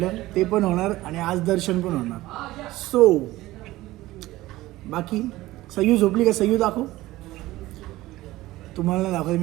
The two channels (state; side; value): quieter; left; 17.4 dB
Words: ते पण होणार आणि आज दर्शन पण होणार. सो बाकी सयू झोपली का. सयू दाखव. तुम्हाला नाही दाखवते